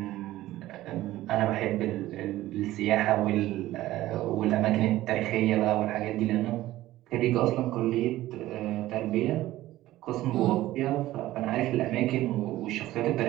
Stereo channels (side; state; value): left; quieter; 15.7 dB